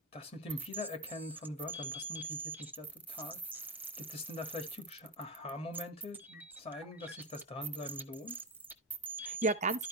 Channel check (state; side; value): normal; both; correlation 0.14